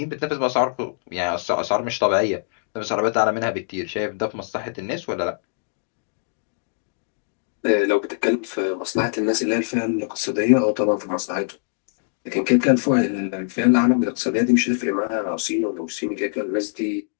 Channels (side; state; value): right; silent; digital silence